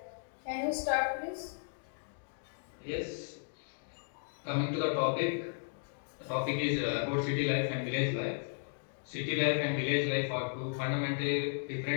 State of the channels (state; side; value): silent; right; digital silence